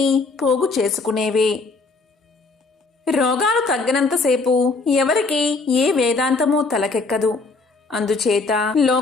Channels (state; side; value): quieter; right; 3.9 dB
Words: పోగు చేసుకునేవే. రోగాలు తగ్గినంతసేపు ఎవరికి ఏ వేదాంతమూ తలకెక్కదు. అందుచేత